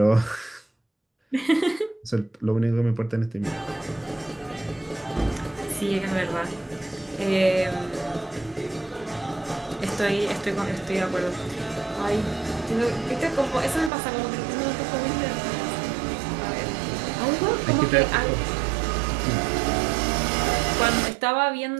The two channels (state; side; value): drops out; left; at 13.9 s